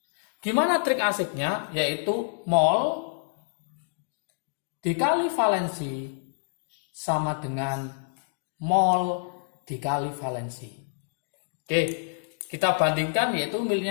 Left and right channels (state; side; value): silent; right; digital silence